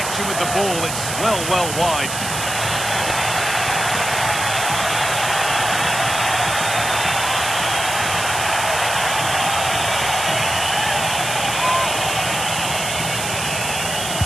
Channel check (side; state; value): right; noise; hiss, 5 dB below the sound